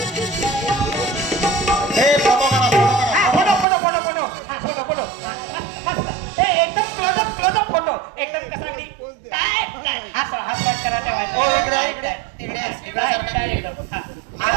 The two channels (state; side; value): drops out; left; at 3.7 s